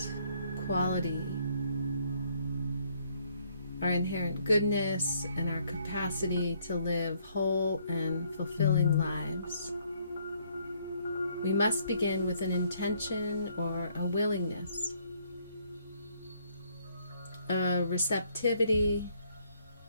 quality, our inherent goodness, and our capacity to live whole and fulfilling lives, we must begin with an intention or a willingness, a receptivity,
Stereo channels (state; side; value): inverted; both; correlation -0.67